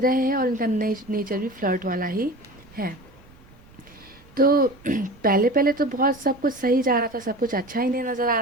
हैं, और इनका नेचर भी फ्लर्ट वाला ही है। तो पहले पहले तो बहुत सब कुछ सही जा रहा था, सब कुछ अच्छा ही नहीं नज़र आ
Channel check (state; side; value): noise; right; rumble, 25 dB below the sound